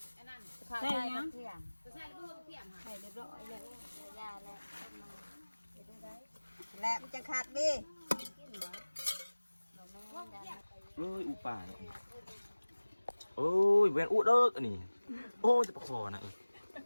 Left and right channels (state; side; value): inverted; both; correlation -1.00